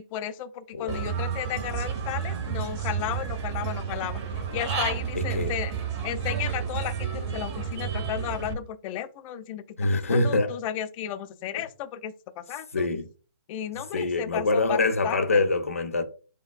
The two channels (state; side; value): inverted; both; correlation -0.43